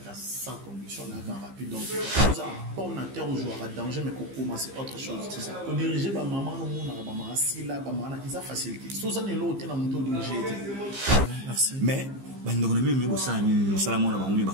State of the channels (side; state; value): left; late; 15 ms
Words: sans condition, on a rapide. Donc, on a terre où jouer à danger, mais qu'on commence autre chose. C'est ça. On dirigeait ma maman, maman, assis là, maman, ils ont facilité. Sauf ça, on est là, on est dans mon tour dirigé. Merci. Mais, on a mis au sein, Salamon, on a mis au